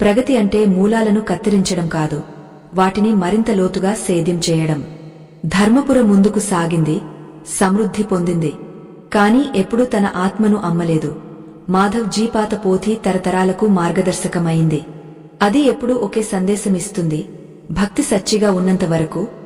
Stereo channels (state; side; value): identical; both; correlation 1.00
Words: ప్రగతి అంటే మూలాలను కత్తిరించడం కాదు, వాటిని మరింత లోతుగా సేద్యం చేయడం. ధర్మపుర ముందుకు సాగింది, సమృద్ధి పొందింది. కాని ఎప్పుడూ తన ఆత్మను అమ్మలేదు. మాధవ్ జీ పాత పోథి తరతరాలకు మార్గదర్శకమైంది. అది ఎప్పుడూ ఒకే సందేశమిస్తుంది, భక్తి సచ్చిగా ఉన్నంత వరకు,